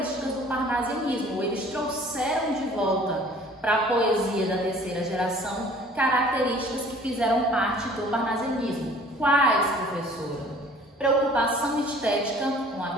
do parnasianismo, eles trouxeram de volta para a poesia da terceira geração características que fizeram parte do parnasianismo. Quais, professora? Preocupação estética com a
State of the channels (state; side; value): normal; both; correlation 0.51